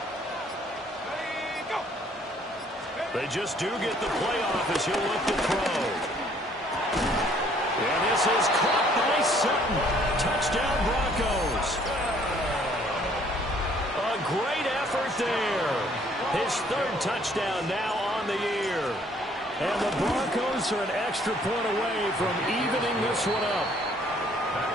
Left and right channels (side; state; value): both; normal; correlation 0.61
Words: They just do get the playoff as he'll look to throw. And this is caught by Sutton. Touchdown, Broncos. A great effort there. His 3rd touchdown now on the year. And the Broncos are an extra point away from evening this one up.